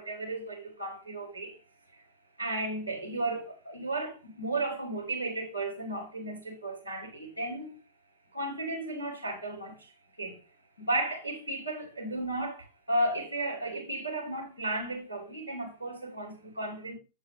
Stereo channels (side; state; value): both; inverted; correlation -0.60